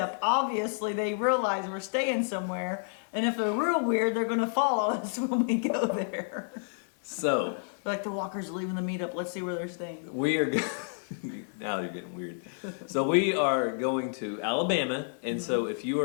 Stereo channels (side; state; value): right; silent; digital silence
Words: Obviously, they realize we're staying somewhere, and if they're real weird, they're going to follow us when we go there. So, like the walkers are leaving the meetup. Let's see where they're staying. We are now they're getting weird. So we are going to Alabama, and so if you